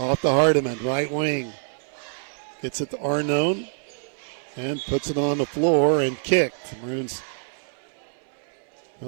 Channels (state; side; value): silent; left; 61 dB below the other